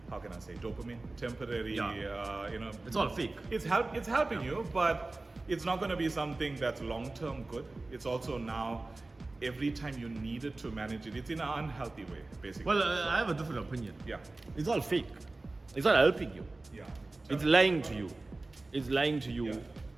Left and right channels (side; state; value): left; quieter; 3.1 dB